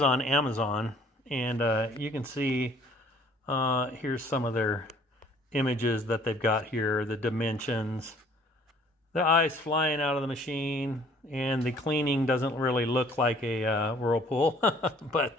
on Amazon, and you can see here's some of their images that they've got here, the dimensions, the ice flying out of the machine, and the cleaning doesn't really look like a whirlpool, but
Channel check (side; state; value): both; normal; correlation 0.56